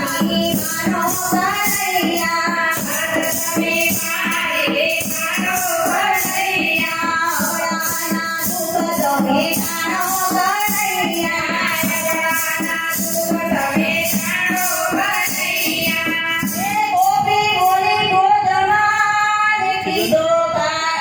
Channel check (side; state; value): both; identical; correlation 1.00